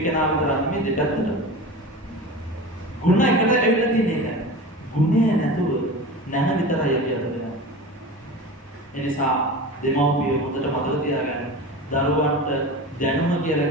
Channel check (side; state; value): both; normal; correlation 0.31